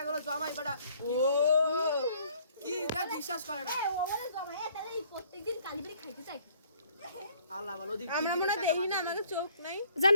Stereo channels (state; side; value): inverted; both; correlation -0.60